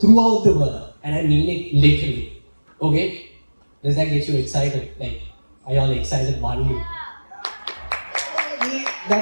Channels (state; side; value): inverted; both; correlation -1.00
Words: the world, and I mean it literally, okay? Does that get you excited? Like, are y'all excited, Banu?